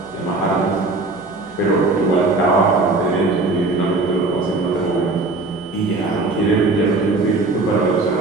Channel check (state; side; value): quieter; left; 3.3 dB